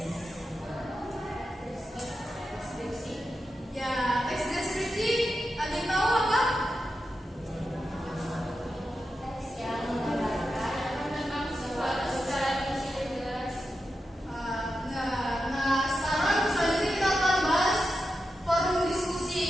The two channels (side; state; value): both; normal; correlation 0.90